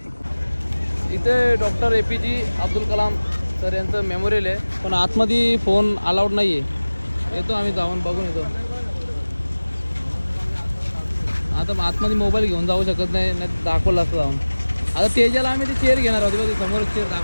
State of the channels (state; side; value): inverted; both; correlation -1.00